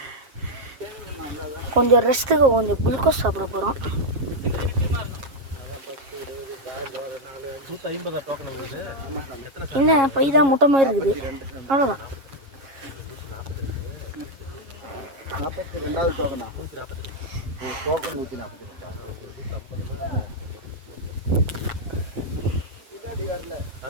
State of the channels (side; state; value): left; late; 7.4 ms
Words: கொஞ்சம் ரெஸ்ட்டுக்கு கொஞ்சம் குளுக்கோஸ் சாப்பிட போகிறோம். 150 டோக்கன் வருது. என்ன பை தான் முட்டை மாதிரி இருக்குது, அவ்வளோதான். 42வது டோக்கனா? டோக்கன் 142.